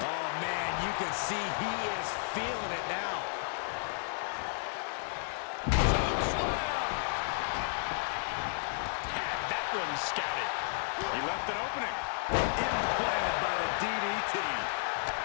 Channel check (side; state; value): right; silent; digital silence